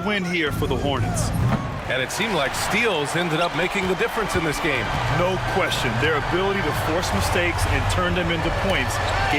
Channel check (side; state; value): both; identical; correlation 1.00